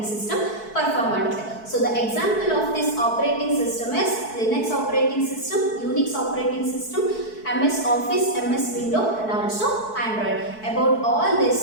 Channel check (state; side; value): late; right; 4.6 ms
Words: ಸಿಸ್ಟಮ್ ಪರ್ಫಾರ್ಮ್ ಮಾಡುತ್ತೆ. So the example of this operating system is Linux operating system, Unix operating system, MS Office, MS Windows, and also Android. About all these